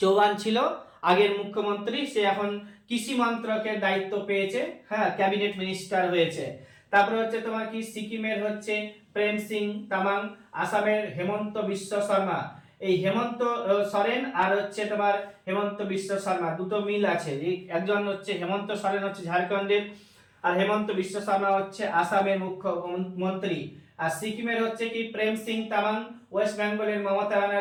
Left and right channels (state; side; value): identical; both; correlation 1.00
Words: ছিল আগের মুখ্যমন্ত্রী, সে এখন কৃষি মন্ত্রকের দায়িত্ব পেয়েছে, হ্যাঁ, ক্যাবিনেট মিনিস্টার হয়েছে। তারপরে হচ্ছে তোমার কি সিকিমের হচ্ছে প্রেম সিং তামাং, আসামের হেমন্ত বিশ্ব শর্মা। এই হেমন্ত সোরেন আর হচ্ছে তোমার হেমন্ত বিশ্ব শর্মা দুটো মিল আছে। একজন হচ্ছে হেমন্ত সোরেন হচ্ছে ঝাড়খণ্ডের, আর হেমন্ত বিশ্ব শর্মা হচ্ছে আসামের মুখ্যমন্ত্রী। আর সিকিমের হচ্ছে কি প্রেম সিং তামাং, ওয়েস্ট বেঙ্গলের মমতা